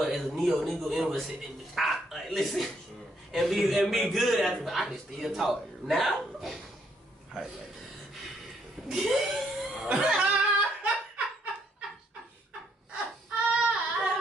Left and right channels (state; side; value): normal; both; correlation 0.72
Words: as a neo nigga, in was sitting, like, listen, and be good after. But I can still talk now.